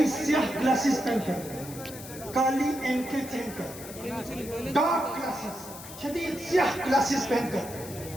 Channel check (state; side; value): noise; left; hiss, 14 dB below the sound